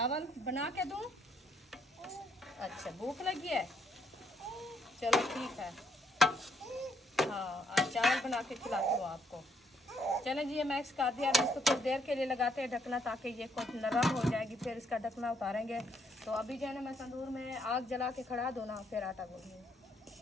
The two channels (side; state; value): both; normal; correlation 0.72